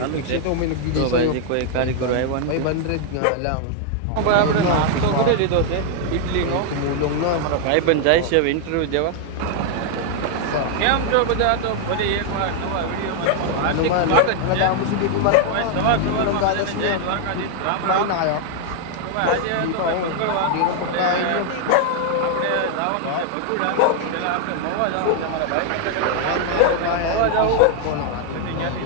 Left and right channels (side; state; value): both; different; correlation 0.00